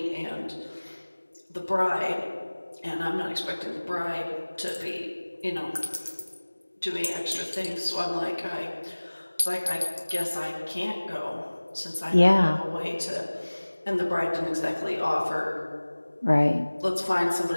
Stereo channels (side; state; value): both; inverted; correlation -1.00